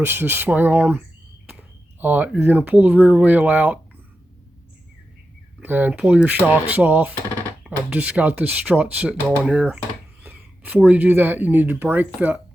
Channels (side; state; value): both; normal; correlation 0.90